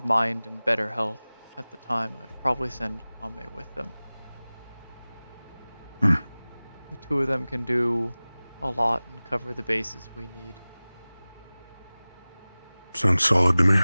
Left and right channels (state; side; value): inverted; both; correlation -0.99